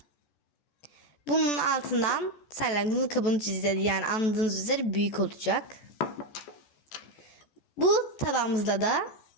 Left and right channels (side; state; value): right; late; 14 ms